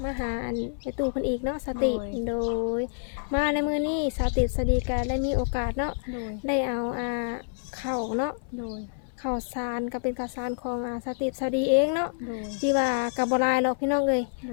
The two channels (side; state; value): right; silent; 60 dB below the other